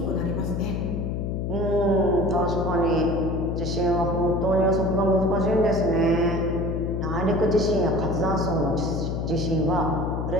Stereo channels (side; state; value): left; noise; hum, 2 dB below the sound